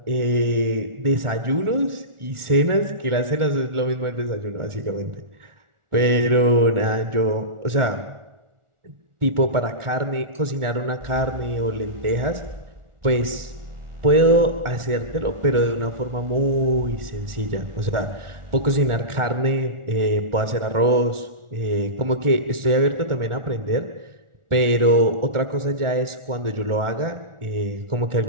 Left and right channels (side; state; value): left; late; 1.4 ms